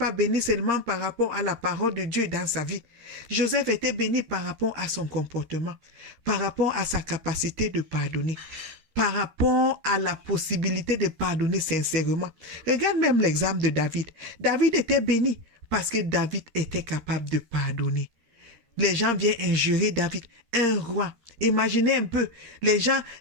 béni seulement par rapport à la parole de Dieu dans sa vie. Joseph était béni par rapport à son comportement, par rapport à sa capacité de pardonner, par rapport à la possibilité de pardonner sincèrement. Regarde même l'exemple de David. David était béni parce que David était capable de pardonner. Les gens viennent injurer David, un roi. Imaginez un peu, les gens,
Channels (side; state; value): left; late; 13 ms